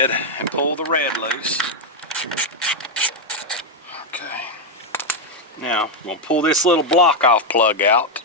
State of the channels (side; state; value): both; normal; correlation 0.01